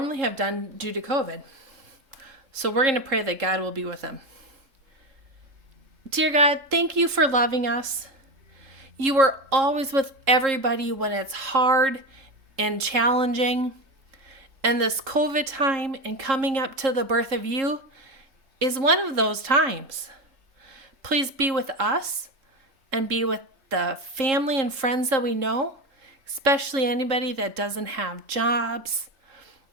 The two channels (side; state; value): left; late; 3.7 ms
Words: have done due to COVID. So we're going to pray that God will be with them. Dear God, thank you for loving us. You are always with everybody when it's hard and challenging. And this COVID time and coming up to the birth of you is one of those times. Please be with us and be with the family and friends that we know, especially anybody that doesn't have jobs